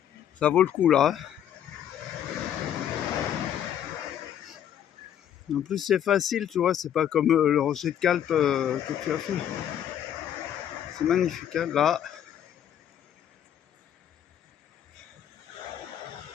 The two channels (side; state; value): right; quieter; 10.0 dB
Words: Ça vaut le coup, là. En plus, c'est facile, tu vois. C'est pas comme le rocher de Calpe que tu as fait. C'est magnifique, hein, là.